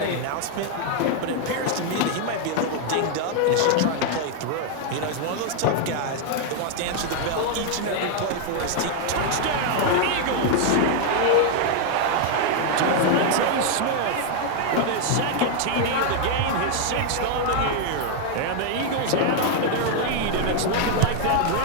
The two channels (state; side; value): different; both; correlation 0.00